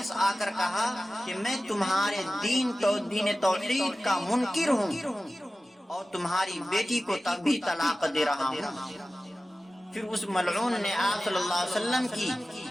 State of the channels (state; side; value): normal; both; correlation 0.96